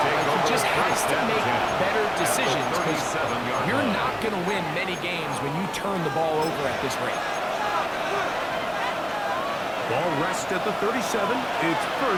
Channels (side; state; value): both; identical; correlation 1.00